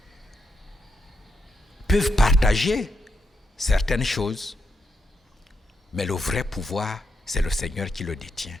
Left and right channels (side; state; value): both; normal; correlation 0.82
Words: Peuvent partager certaines choses, mais le vrai pouvoir, c'est le Seigneur qui le détient.